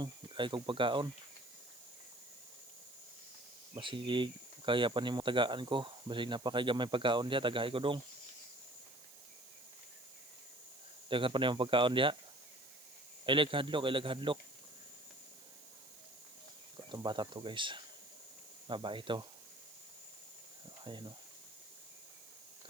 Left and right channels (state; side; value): noise; right; hiss, 18 dB below the sound